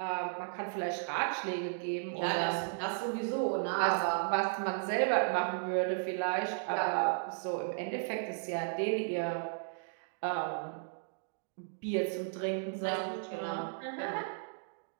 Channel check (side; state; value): left; silent; digital silence